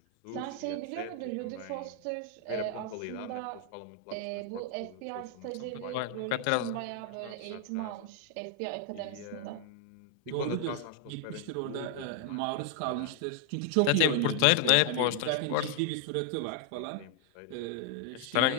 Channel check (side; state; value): both; different; correlation 0.00